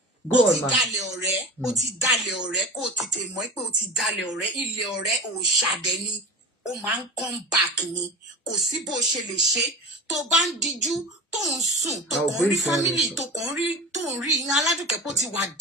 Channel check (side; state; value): both; normal; correlation 0.32